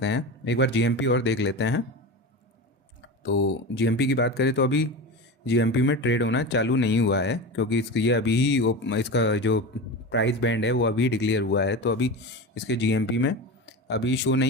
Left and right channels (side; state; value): both; normal; correlation 0.26